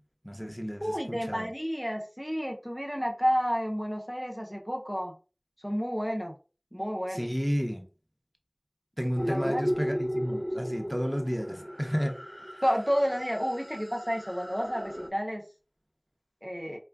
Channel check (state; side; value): identical; both; correlation 1.00